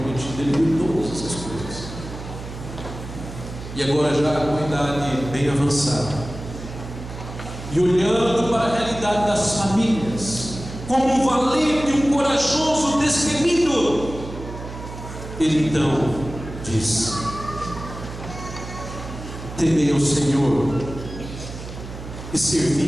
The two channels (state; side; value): noise; right; hum, 11 dB below the sound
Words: Ele viu todas essas coisas. E agora, já com a idade bem avançada, e olhando para a realidade das famílias, como um valente, um corajoso destemido, Ele então diz: temei ao Senhor e